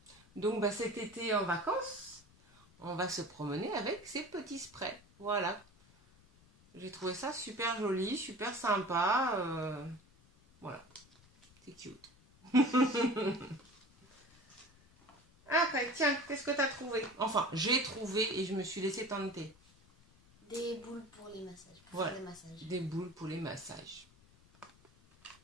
Donc, cet été en vacances, on va se promener avec ces petits sprays. Voilà. J'ai trouvé ça super joli, super sympa. Voilà, c'est cute. Après, tiens, qu'est-ce que tu as trouvé? Enfin, j'ai trouvé et je me suis laissé tenter. Des boules pour les massages. Pour faire des massages. Des boules pour les massages.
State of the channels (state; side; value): noise; left; rumble, 28 dB below the sound